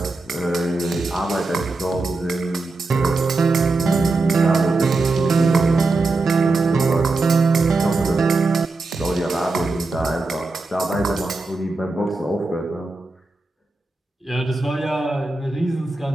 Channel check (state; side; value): quieter; left; 3.4 dB